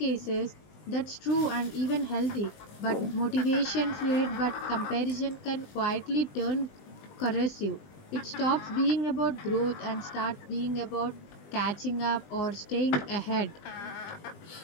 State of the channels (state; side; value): late; right; 20 ms